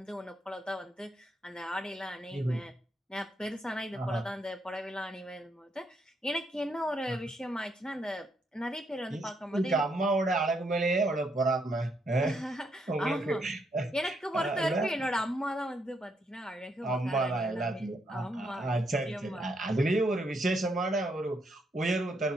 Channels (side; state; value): both; normal; correlation 0.76